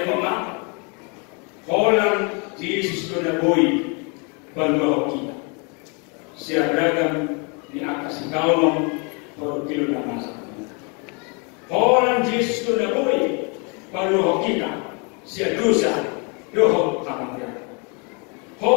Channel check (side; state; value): right; quieter; 33.8 dB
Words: mo ma, holang Yesus ko na boy balwa ho kita. Siya beragam ni akas ikaw por kilo na masa. Holang Yesus ko na boy balwa ho kita. Siya dosa doho kamarya.